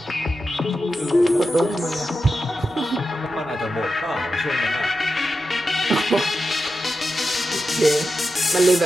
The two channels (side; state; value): right; noise; rumble, 28 dB below the sound